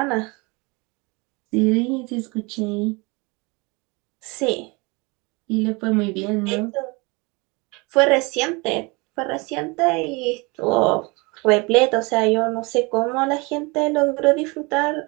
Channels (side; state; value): left; quieter; 27.3 dB